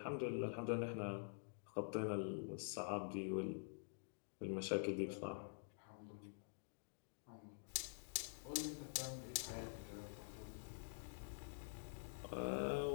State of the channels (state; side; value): silent; right; digital silence